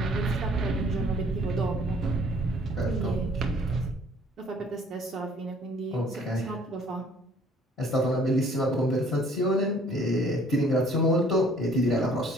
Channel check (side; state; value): both; normal; correlation 0.57